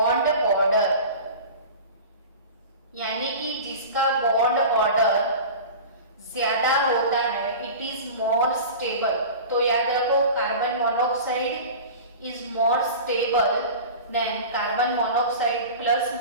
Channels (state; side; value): inverted; both; correlation -0.34